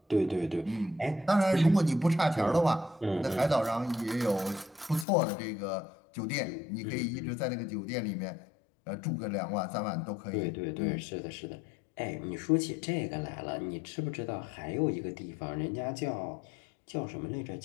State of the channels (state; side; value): drops out; right; at 5.1 s